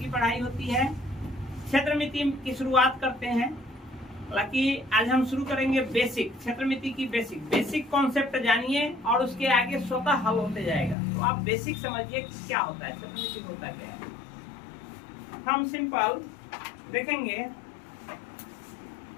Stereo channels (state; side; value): drops out; right; at 11.0 s